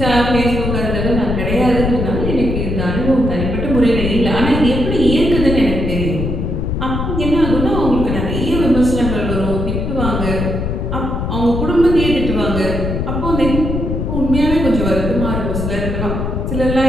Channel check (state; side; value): noise; left; rumble, 2 dB below the sound